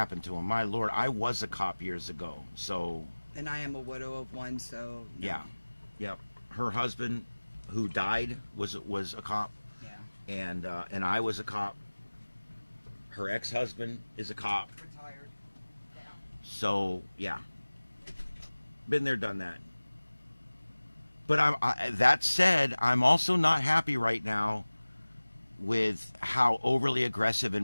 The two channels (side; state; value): both; inverted; correlation -1.00